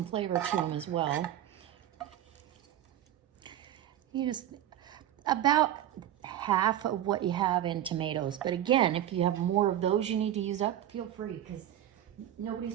flavor to them as well. You just, about half of what you have in tomatoes. But again, if you have more of those you need to use up, feel free, because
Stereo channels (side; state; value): left; quieter; 11.8 dB